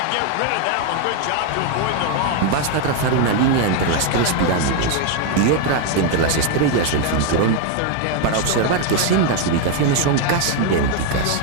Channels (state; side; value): different; both; correlation 0.01